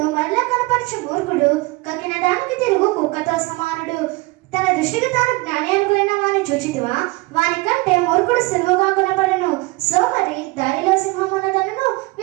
మరలా కనపరచు మూర్ఖుడు కక్కిన దానికి తిరుగు కుక్కతో సమానుడు. తన దృష్టికి తాను జ్ఞాని అనుకున్న వాని చూచితివా? వాని కంటే మూర్ఖుడు సులువుగా కొనపడను. సోమరి దారిలో సింహమున్నదనను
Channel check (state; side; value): quieter; left; 23.5 dB